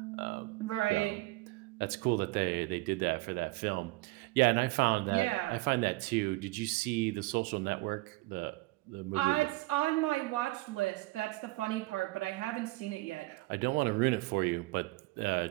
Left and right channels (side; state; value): left; quieter; 21.7 dB